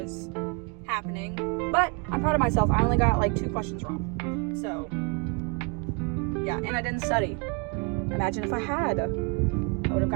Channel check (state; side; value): quieter; left; 32.7 dB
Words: happening, but I'm proud of myself. I only got like 2 questions wrong, so yeah, and I didn't study. Imagine if I had. I would have